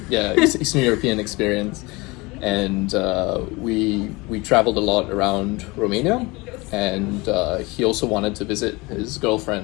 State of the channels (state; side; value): quieter; right; 24.0 dB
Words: Yeah, Eastern European experience, and we traveled a lot around Romania, and he also wanted to visit his